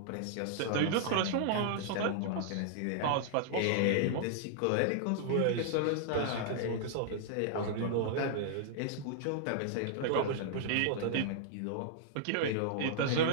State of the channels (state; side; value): different; both; correlation -0.01